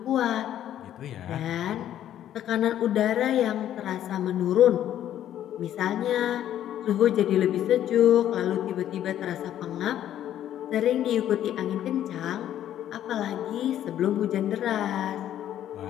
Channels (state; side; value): quieter; right; 11.3 dB